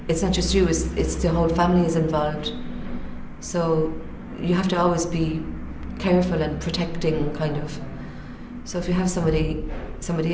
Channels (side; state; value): both; identical; correlation 1.00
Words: it's not just you, it's the whole family is involved. So you have to always be careful and protecting, kind of. So if you have somebody